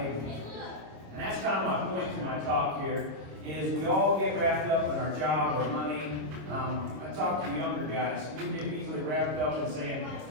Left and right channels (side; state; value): left; late; 26 ms